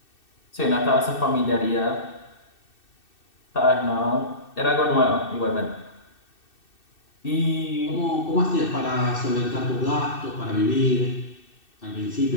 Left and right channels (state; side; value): late; right; 2.6 ms